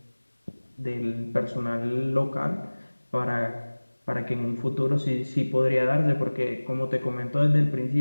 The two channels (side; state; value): both; inverted; correlation -1.00